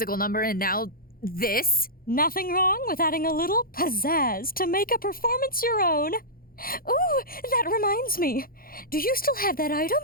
number and now this? Nothing wrong with adding a little pizzazz to make a performance your own. Ooh, that reminds me. Do you still have that item?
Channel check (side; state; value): right; late; 0.42 ms